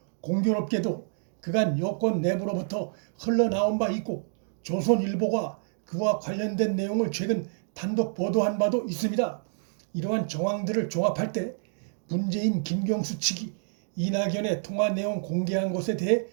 공교롭게도 그간 여권 내부로부터 흘러나온 바 있고 조선일보가 그와 관련된 내용을 최근 단독 보도한 바도 있습니다. 이러한 정황들을 종합할 때 문재인 김경수 측이 이낙연의 통화 내용 공개한 것에 대해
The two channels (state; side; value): silent; left; digital silence